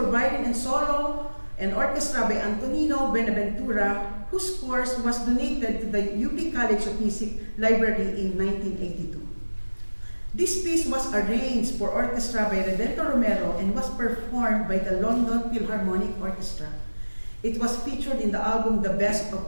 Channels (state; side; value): inverted; both; correlation -1.00